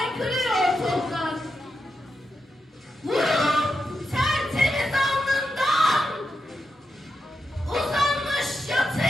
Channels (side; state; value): both; normal; correlation 0.87